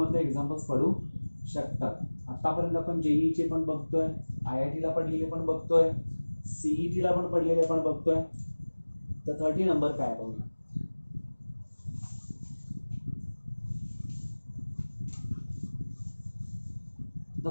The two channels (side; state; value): both; inverted; correlation -1.00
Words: एक्झाम्पल्स पडू शकतात. आतापर्यंत आपण जेईचे पण बघतोय IIT ला पडलेले पण बघतोय CET ला पण पडलेले पण बघतोय. तर 30 नंबर काय बघूया.